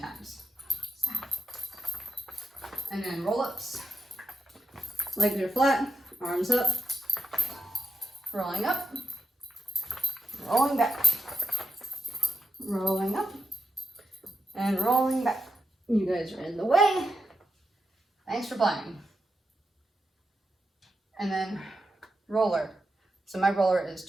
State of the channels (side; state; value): both; normal; correlation 0.86